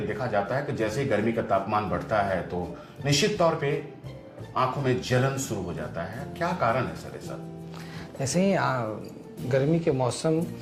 देखा जाता है कि जैसे गर्मी का तापमान बढ़ता है तो निश्चित तौर पे आंखों में जलन शुरू हो जाता है। क्या कारण है सर ऐसा? ऐसे ही गर्मी के मौसम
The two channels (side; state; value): both; identical; correlation 1.00